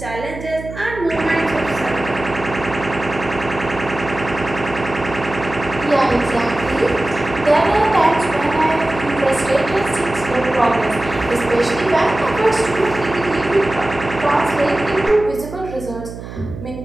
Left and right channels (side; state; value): right; noise; hum, 11 dB below the sound